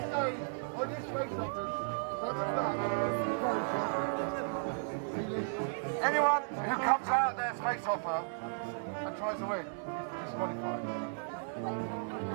stay on your space offers, front and back, anyone who comes out of their space offer and tries to win, disqualified.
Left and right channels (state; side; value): silent; left; digital silence